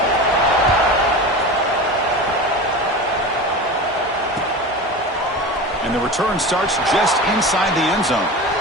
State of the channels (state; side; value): normal; both; correlation 0.30